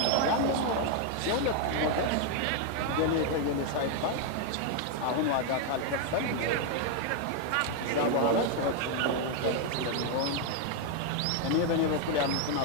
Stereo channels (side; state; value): both; different; correlation 0.01